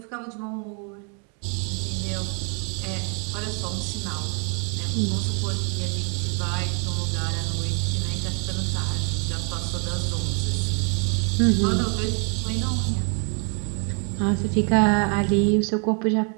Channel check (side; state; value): left; quieter; 38.3 dB